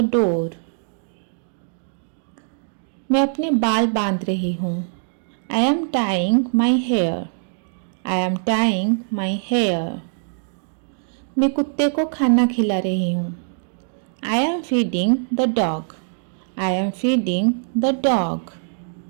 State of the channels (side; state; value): left; silent; digital silence